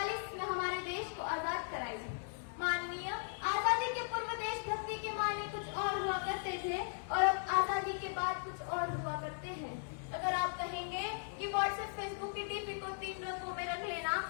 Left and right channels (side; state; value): right; silent; digital silence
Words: में हमारे देश को आजाद कराई। माननीय, आजादी के पूर्व देशभक्ति के मायने कुछ और हुआ करते थे और अब आजादी के बाद कुछ और हुआ करते हैं। अगर आप कहेंगे कि व्हाट्सएप फेसबुक की डीपी को 3 रंगों में रख लेना,